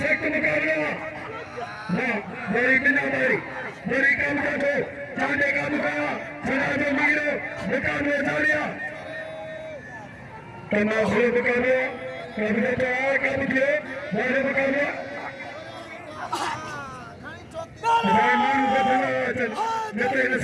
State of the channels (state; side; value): identical; both; correlation 1.00